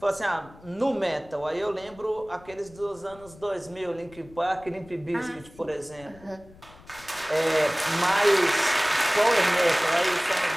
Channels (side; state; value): left; noise; rumble, 23 dB below the sound